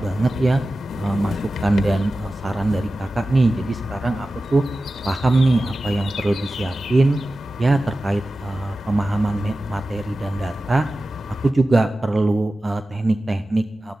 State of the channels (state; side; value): normal; both; correlation 0.95